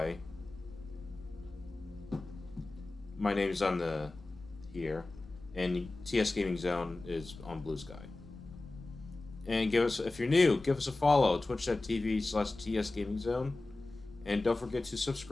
My name's on the here, and TS Gaming Zone is on Blue Sky. And if you're new, give us a follow, twitch.tv/TS Gaming Zone, and don't forget to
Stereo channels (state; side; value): quieter; right; 3.0 dB